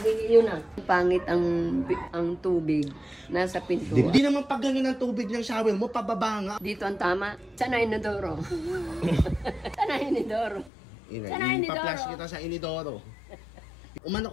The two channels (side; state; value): right; drops out; at 10.7 s